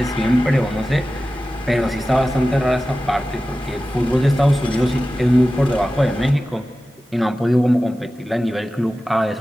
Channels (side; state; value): both; normal; correlation 0.95